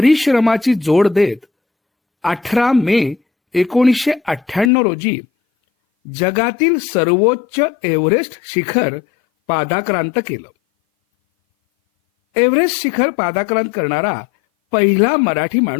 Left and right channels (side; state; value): right; drops out; at 4.7 s